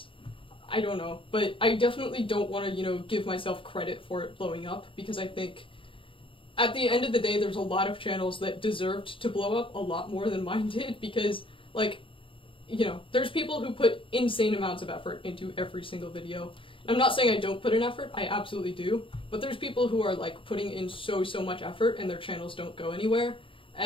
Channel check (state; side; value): late; right; 0.25 ms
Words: I don't know. But I definitely don't want to, give myself credit for it blowing up, because I think at the end of the day, there's a lot of channels that deserved to blow up a lot more than mine did, because, like, there's people who put insane amounts of effort into every single video. And I'm not saying I don't put in effort, I absolutely do, but there's people who are, like, putting in so much effort and their channels don't go anywhere,